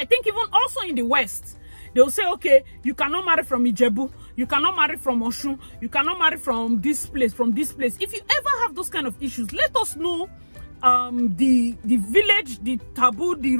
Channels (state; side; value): inverted; both; correlation -1.00